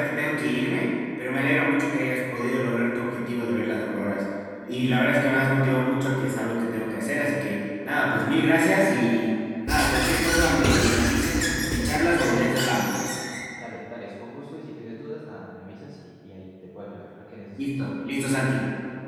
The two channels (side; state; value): both; identical; correlation 1.00